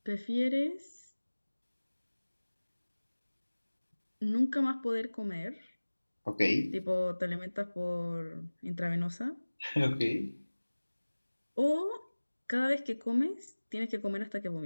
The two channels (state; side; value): inverted; both; correlation -1.00